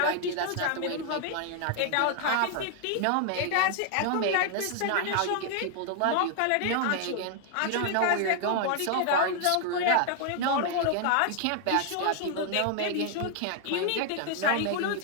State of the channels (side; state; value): both; different; correlation 0.00